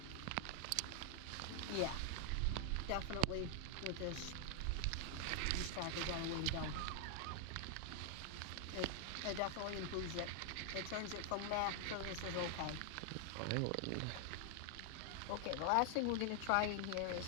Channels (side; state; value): both; different; correlation 0.00